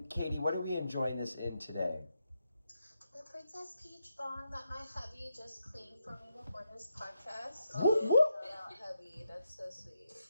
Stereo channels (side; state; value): both; inverted; correlation -0.84